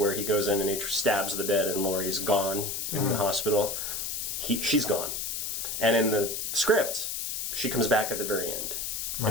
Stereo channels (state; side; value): noise; left; hiss, 3 dB below the sound